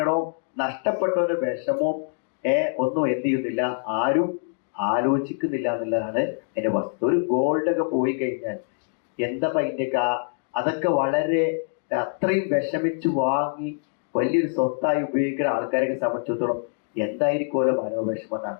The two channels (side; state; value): right; silent; digital silence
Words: നഷ്ടപ്പെട്ടവന്റെ വിഷമവും ഒന്നും എന്ത് ചെയ്യുന്നില്ല, ആരും ആലോചിക്കുന്നില്ല എന്നുള്ളതാണ് എന്റെ വസ്തുത. ഒരു ഗോൾഡൊക്കെ പോയി കഴിഞ്ഞാൽ എന്താ അതിൻ്റെയൊക്കെ അതൊക്കെ വളരെ അത്രയും വിഷമിച്ച് വാങ്ങി വലിയൊരു സ്വത്തായി ഉപയോഗിക്കുന്ന ആൾക്കാരെ സംബന്ധിച്ചിടത്തോളം എന്തായിരിക്കുമല്ലോ മനോവിഷമം എന്നാണ്.